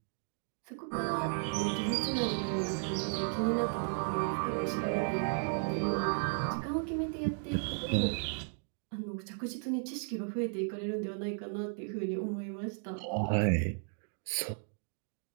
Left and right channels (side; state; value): left; silent; 55 dB below the other